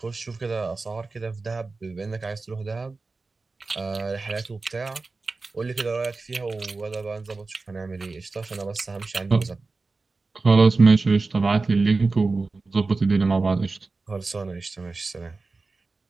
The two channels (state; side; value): quieter; left; 3.8 dB